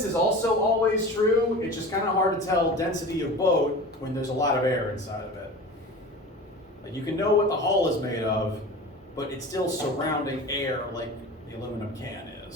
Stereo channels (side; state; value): both; normal; correlation 0.35